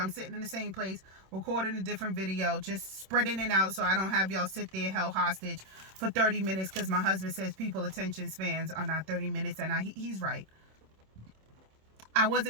sitting in the same place, recording a different video, just spreading it out so I don't have y'all sit there held hostage for 30 minutes because my husband says people attention spans are not 30 minutes, and he's right. I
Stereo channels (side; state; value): left; late; 26 ms